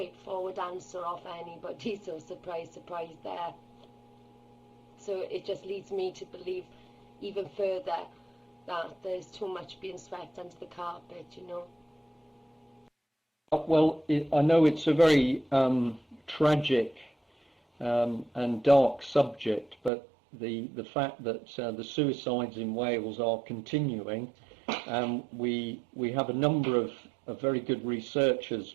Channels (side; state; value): left; drops out; at 19.9 s